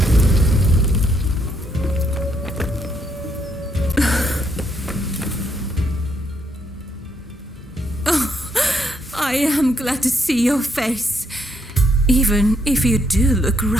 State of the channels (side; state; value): both; normal; correlation 0.74